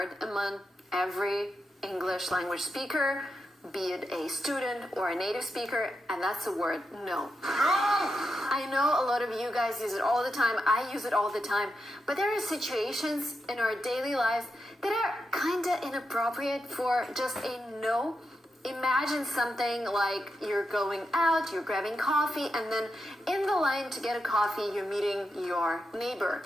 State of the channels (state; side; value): normal; both; correlation 0.87